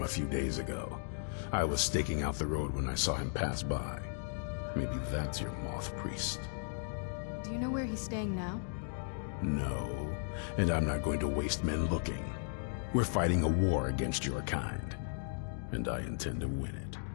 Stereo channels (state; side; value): silent; right; digital silence